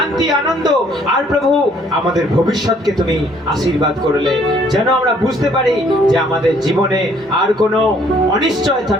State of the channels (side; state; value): both; normal; correlation 0.62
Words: আনন্দ, আর প্রভু আমাদের ভবিষ্যৎকে তুমি আশীর্বাদ করলে, যেন আমরা বুঝতে পারি যে আমাদের জীবনে আর কোনো অনিশ্চয়তা